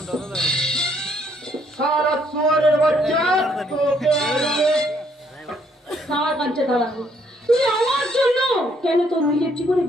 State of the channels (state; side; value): normal; both; correlation 0.68